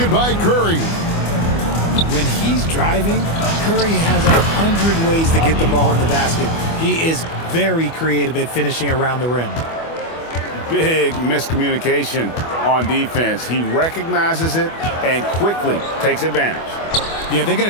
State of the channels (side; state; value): right; late; 25 ms